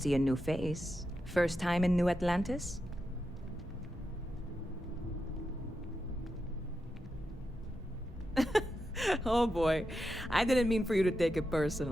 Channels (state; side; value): normal; both; correlation 0.88